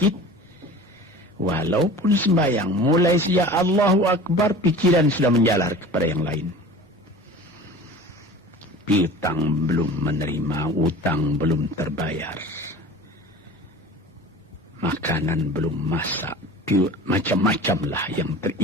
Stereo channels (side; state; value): both; normal; correlation 0.39